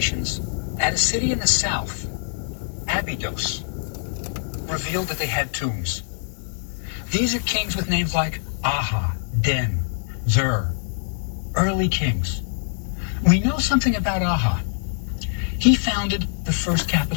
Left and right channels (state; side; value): silent; right; 63 dB below the other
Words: at a city in the south, Abydos, revealed that they had tombs. These are kings with names like Aha, Den, Zur, early kings. We know something about Aha. He founded the first